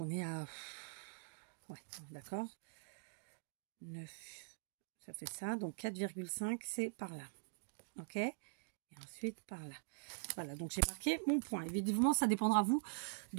est à... Ouais, d'accord. 9. Ça fait ça. Donc, 4,5, c'est par là. OK? Et ensuite, par là. Voilà, donc j'ai marqué mon point. Évidemment, ça dépendra, vous,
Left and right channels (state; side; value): silent; left; digital silence